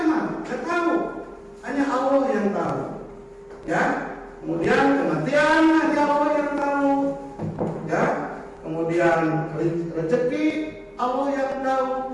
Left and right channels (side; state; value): both; identical; correlation 1.00